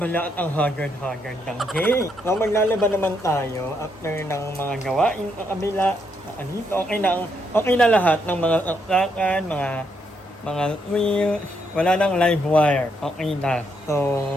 at ang haggard ng day. So, maglalaba naman tayo after ng mga gawain sa kabila. Andito, okay na lahat ng mga saksakan, mga mga wheels, wala nang live wire. Okay na. So,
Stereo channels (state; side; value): normal; both; correlation 0.76